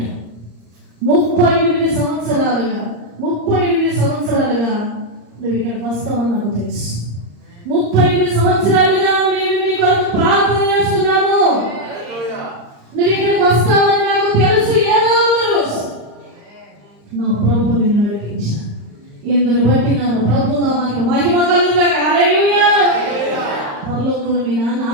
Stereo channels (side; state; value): left; late; 34 ms